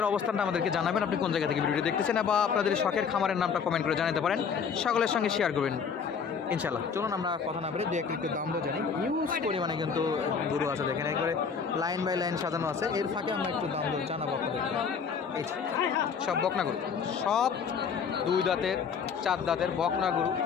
অবস্থানটা আমাদেরকে জানাবেন, আপনি কোন জায়গা থেকে ভিডিওটি দেখতেছেন, বা আপনাদের শখের খামারের নামটা কমেন্ট করে জানাতে পারেন, সকলের সঙ্গে শেয়ার করবেন ইনশাল্লাহ। চলুন আমরা কথা না বলে দু একটু দাম তো জানি। হিউজ পরিমাণে কিন্তু গরু আছে, দেখেন একবারে লাইন বাই লাইন সাজানো আছে। এর ফাঁকে আমরা একটু দাম দর জানাবো আপনাদেরকে। এই সব বকনা গরু, সব 2 দাঁতের 4 দাঁতের বকনা গরু,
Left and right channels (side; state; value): right; quieter; 6.3 dB